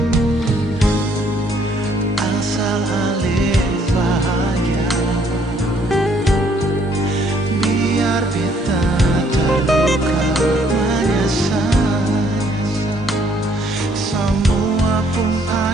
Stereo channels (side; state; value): both; normal; correlation 0.65